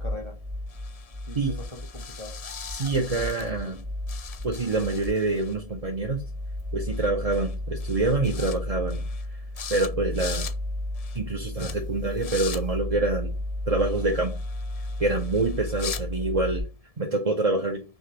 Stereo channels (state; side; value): late; left; 1.7 ms